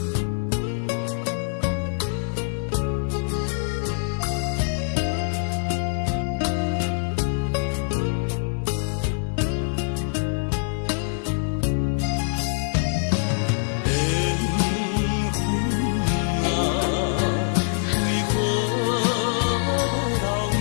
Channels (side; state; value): right; silent; digital silence